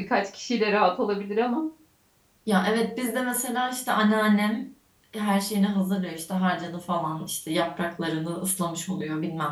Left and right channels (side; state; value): both; identical; correlation 1.00